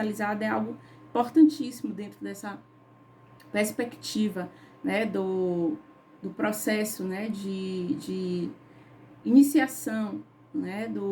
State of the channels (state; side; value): identical; both; correlation 1.00